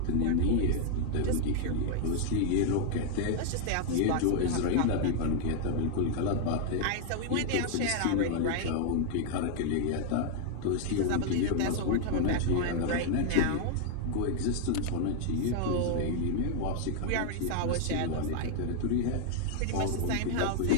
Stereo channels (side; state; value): both; different; correlation 0.00